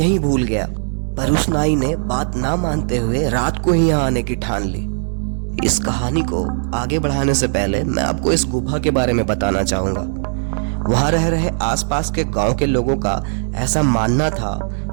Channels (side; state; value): left; silent; digital silence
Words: भूल गया। पर उस नाई ने बात ना मानते हुए रात को ही यहाँ आने की ठान ली। इस कहानी को आगे बढ़ाने से पहले मैं आपको इस गुफा के बारे में बताना चाहूंगा। वहां रह रहे आसपास के गांव के लोगों का ऐसा मानना था